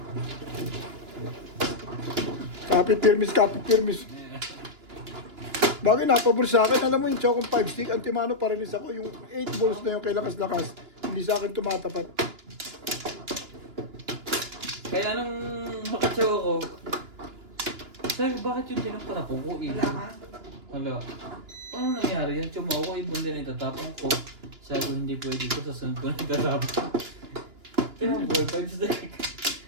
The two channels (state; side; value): late; left; 2.9 ms